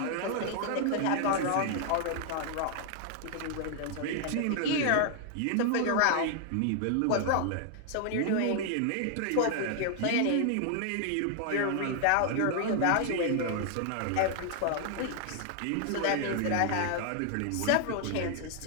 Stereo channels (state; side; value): different; both; correlation 0.00